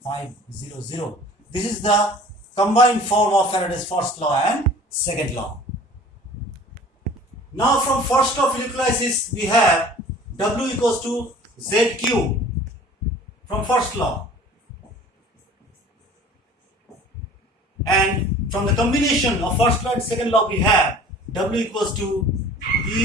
This is the combined form of Faraday's first law and second law. Now, from first law of electrolysis, we have W equals to ZQ from first law. And from the combination of first law and second law, we have W equals to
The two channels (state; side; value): normal; both; correlation 0.46